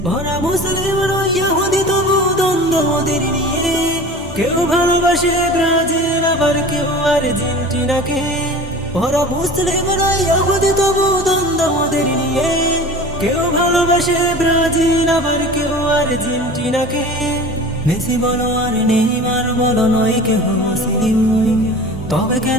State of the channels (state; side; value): normal; both; correlation 0.38